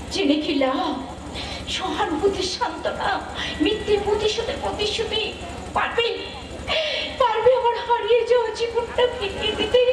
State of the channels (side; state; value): both; identical; correlation 1.00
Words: জেনে কি লাভ? সহানুভূতির সান্ত্বনা, মিথ্যে প্রতিশোধের প্রতিশ্রুতি পারবে পারবে আমার হারিয়ে যাওয়া জীবনটা ফিরিয়ে দিতে